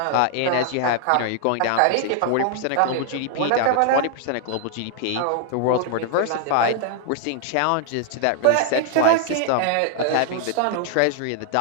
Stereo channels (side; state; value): both; different; correlation 0.00